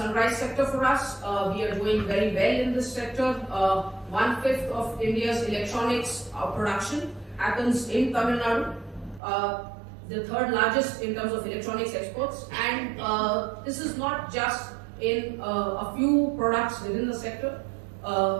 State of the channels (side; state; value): left; drops out; at 9.2 s